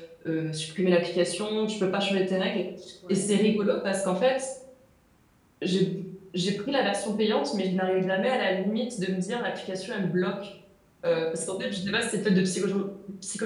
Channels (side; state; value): both; identical; correlation 1.00